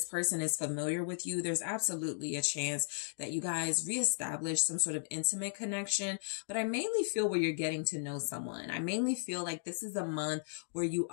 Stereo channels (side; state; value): right; silent; digital silence